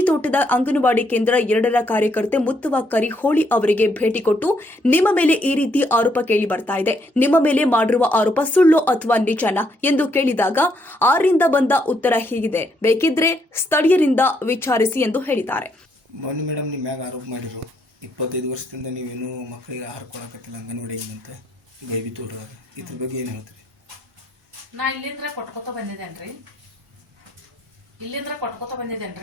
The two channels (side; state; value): both; normal; correlation 0.73